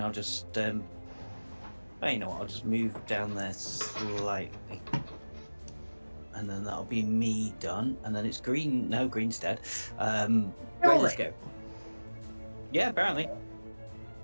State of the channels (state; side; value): inverted; both; correlation -1.00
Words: just, well, you know what? I'll just move down there slightly, and then that'll be me done. And then it's green. No, green's dead. Right, let's go. Yeah, apparently.